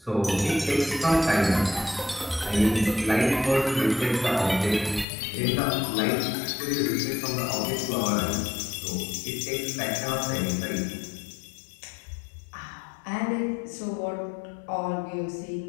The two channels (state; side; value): drops out; right; at 5.1 s